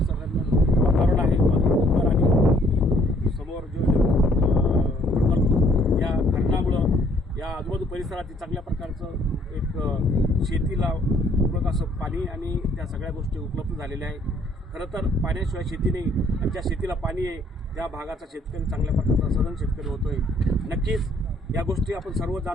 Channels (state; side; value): normal; both; correlation 0.63